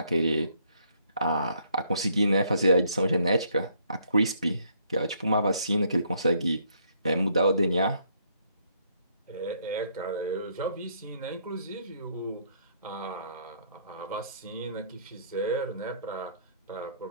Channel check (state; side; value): inverted; both; correlation -0.68